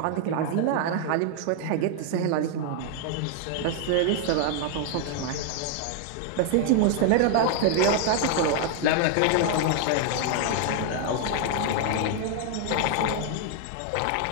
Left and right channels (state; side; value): different; both; correlation 0.00